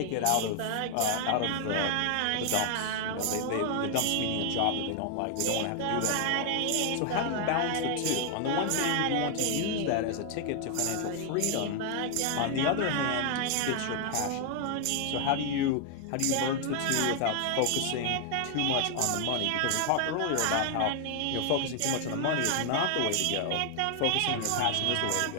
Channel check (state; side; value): different; both; correlation 0.00